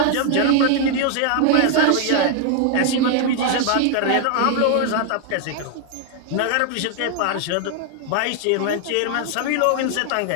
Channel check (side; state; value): both; different; correlation 0.00